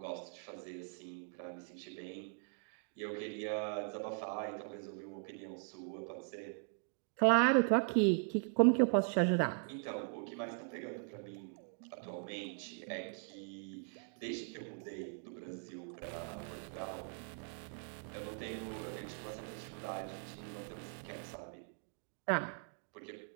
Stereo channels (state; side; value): silent; left; 51 dB below the other